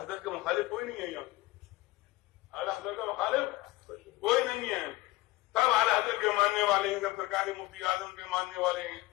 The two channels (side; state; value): right; quieter; 19.1 dB